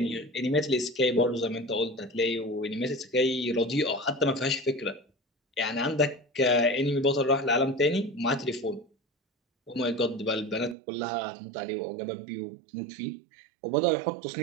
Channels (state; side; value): drops out; left; at 10.8 s